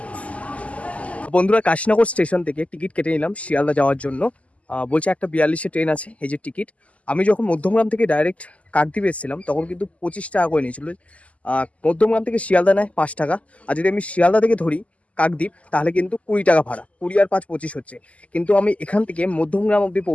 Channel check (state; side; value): late; right; 0.067 ms